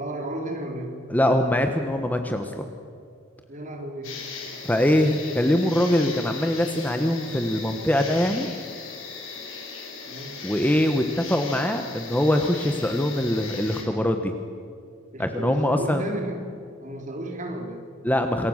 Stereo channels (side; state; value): both; normal; correlation 0.78